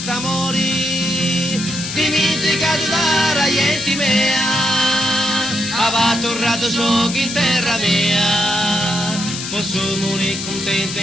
amori, dimenticato da raienti mea, aveva tornato so che in terra mia, posso morire contento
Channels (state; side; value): noise; left; hiss, 7 dB below the sound